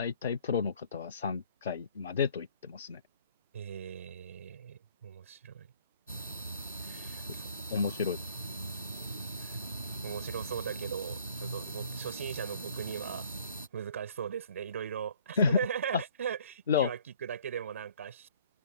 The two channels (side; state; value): both; inverted; correlation -0.57